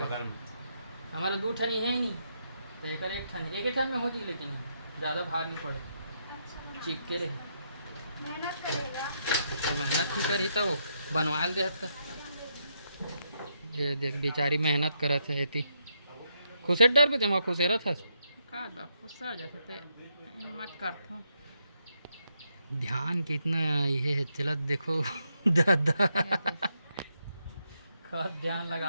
हमारा दो ठन है नहीं तो एक ठन एक ठन में हो जी, लेकिन ज़्यादा भार नहीं पड़े चिपके रहे। मेहनत करेगा तो मेहनत ही करी तो बनवा दे तो ये देख बेचारी मेहनत करत है इतनी खुशे डर पे तुम खुशे रह का बा खुश हो जाते ते मत करथो ध्यान कितना ये है चलत देखो दादा खत ध्यान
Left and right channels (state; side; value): inverted; both; correlation -0.79